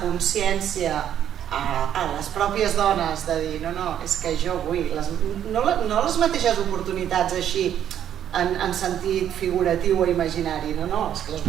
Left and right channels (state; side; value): quieter; left; 10.1 dB